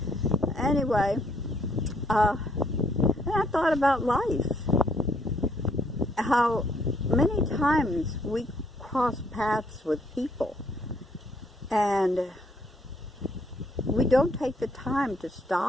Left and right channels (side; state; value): both; normal; correlation 0.68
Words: Anyway, and I thought about life. How many times we cross paths with people and we don't take the time to